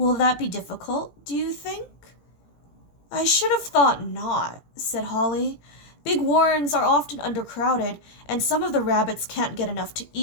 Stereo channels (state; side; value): late; right; 17 ms